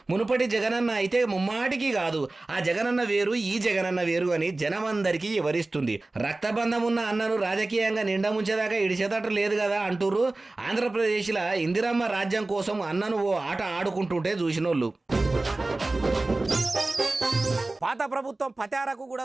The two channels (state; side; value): quieter; left; 3.0 dB